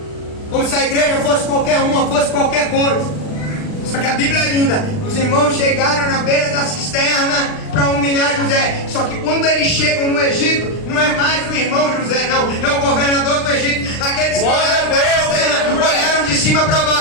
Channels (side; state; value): right; late; 39 ms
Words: Como se a igreja fosse qualquer uma, fosse qualquer coisa. Só que a Bíblia é linda. Os irmãos chegaram na beira da cisterna para humilhar José. Só que quando eles chegam no Egito, não é mais o irmão José, não. É o governador do Egito. Aqueles que olharam para a cisterna, olharam de cima para